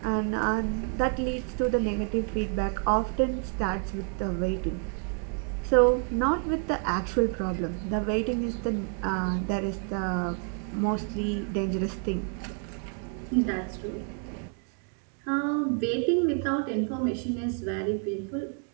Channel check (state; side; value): quieter; left; 39.8 dB